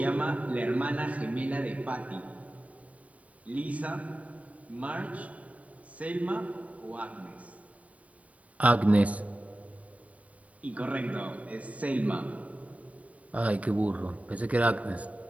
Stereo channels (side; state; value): left; late; 0.068 ms